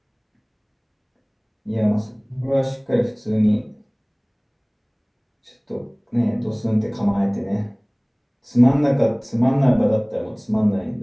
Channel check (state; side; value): identical; both; correlation 1.00